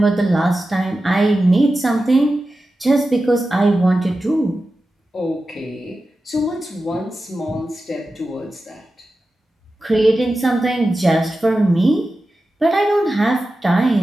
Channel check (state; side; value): normal; both; correlation 0.93